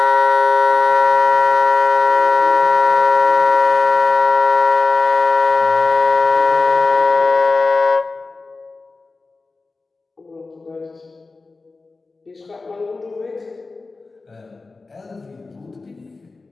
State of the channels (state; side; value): quieter; right; 3.8 dB